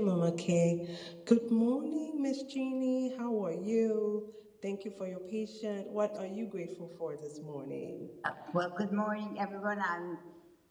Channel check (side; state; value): both; identical; correlation 1.00